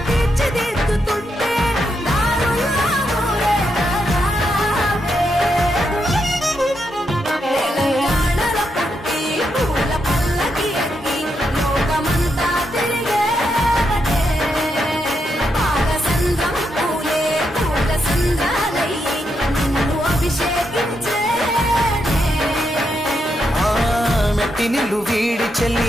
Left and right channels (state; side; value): normal; both; correlation 0.82